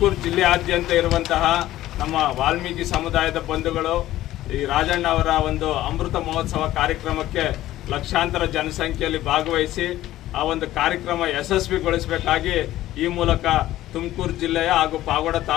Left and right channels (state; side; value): quieter; right; 14.7 dB